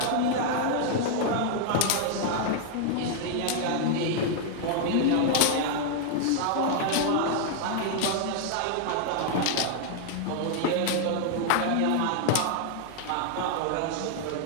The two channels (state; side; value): different; both; correlation 0.00